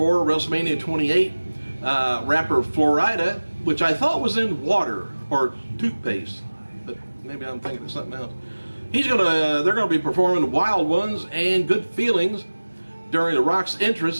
WrestleMania 28. Rapper Florida, which I thought was in water or toothpaste, but maybe I'm thinking of something else. They're gonna be performing Wild Ones and Good Feelings during The Rock's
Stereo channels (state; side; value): inverted; both; correlation -1.00